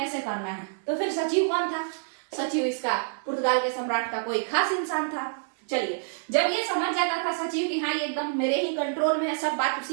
करना है। तो फिर सचिव कौन था? सचिव इसका पुर्तगाल के सम्राट का कोई खास इंसान था। चलिए, जब ये समझ जाता था सचिव कि हाँ ये एकदम मेरे ही कंट्रोल में है, सब बात उसी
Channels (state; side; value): silent; left; 60 dB below the other